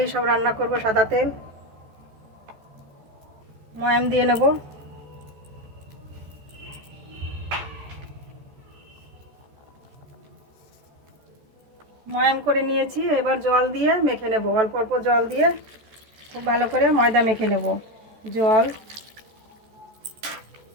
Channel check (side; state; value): left; late; 14 ms